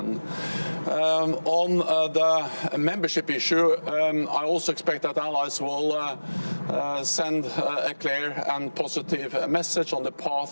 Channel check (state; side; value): inverted; both; correlation -1.00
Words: On the membership issue, I also expect that allies will send a clear and positive message on the